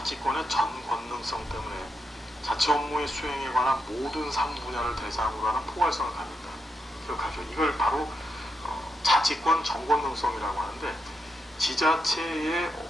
전 권능성 때문에 자치 업무의 수행에 관한 모든 사무분야를 대상으로 하는 포괄성을 갖는다. 기억하죠? 이걸 바로 자치권 전권능성이라고 하는데 지자체의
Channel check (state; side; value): normal; both; correlation 0.83